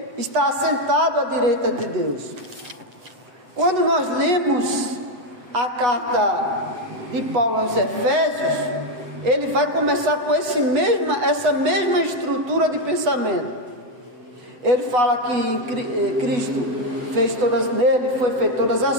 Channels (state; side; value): late; left; 7.8 ms